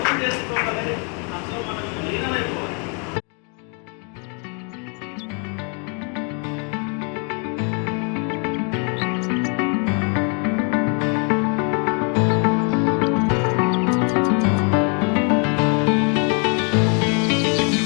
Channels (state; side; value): quieter; right; 37.4 dB